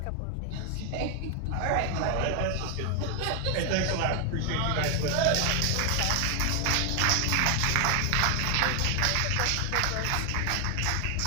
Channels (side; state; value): both; different; correlation 0.00